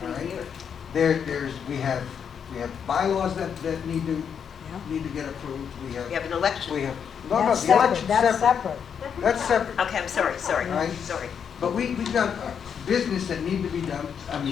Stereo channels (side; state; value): right; quieter; 7.4 dB